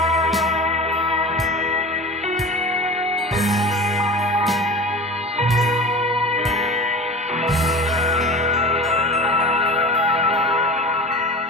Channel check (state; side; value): normal; both; correlation 0.34